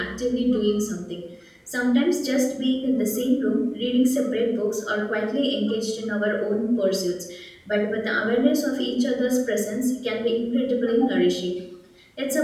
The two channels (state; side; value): identical; both; correlation 1.00